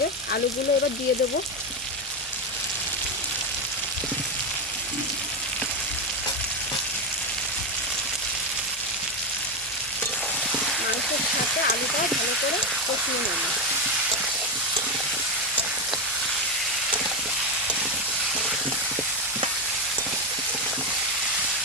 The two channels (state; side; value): normal; both; correlation 0.10